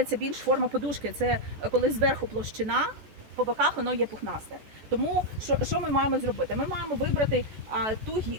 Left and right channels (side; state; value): left; late; 14 ms